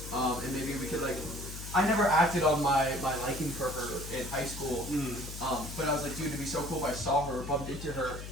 and maybe we could like. I never acted on my liking for her in high school, but I was like, dude, it'd be so cool if I saw her, bumped into her,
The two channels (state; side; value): noise; left; hum, 10 dB below the sound